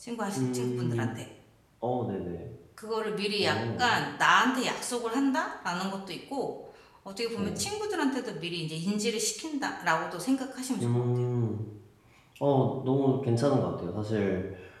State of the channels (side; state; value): both; identical; correlation 1.00